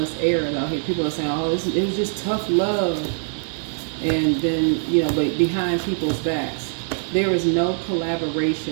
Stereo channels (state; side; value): silent; left; digital silence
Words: air is out here. People are saying, oh, it was just tough love. And then, but behind people's backs. There is no